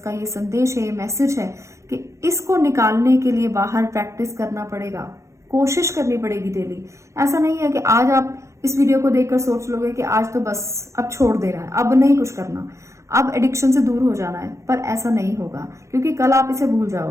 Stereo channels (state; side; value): late; left; 0.14 ms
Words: का ये संदेश है, ये मैसेज है कि इसको निकालने के लिए बाहर प्रैक्टिस करना पड़ेगा, कोशिश करनी पड़ेगी डेली। ऐसा नहीं है कि आज आप इस वीडियो को देखकर सोच लोगे कि आज तो बस अब छोड़ देना है, अब नहीं कुछ करना, अब एडिक्शन से दूर हो जाना है, पर ऐसा नहीं होगा, क्योंकि कल आप इसे भूल